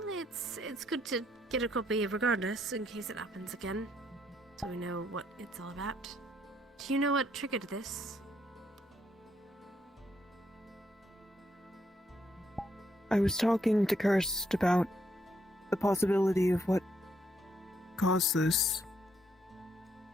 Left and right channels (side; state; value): both; normal; correlation 0.74